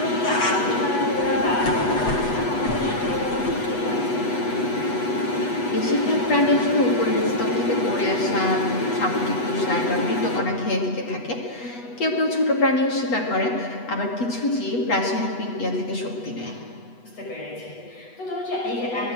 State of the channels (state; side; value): late; right; 8.1 ms